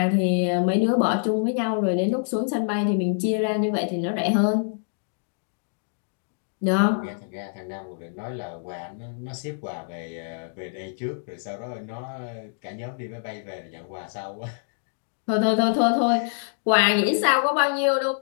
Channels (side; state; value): right; silent; digital silence